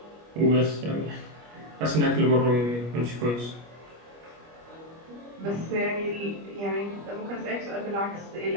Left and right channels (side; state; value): left; late; 25 ms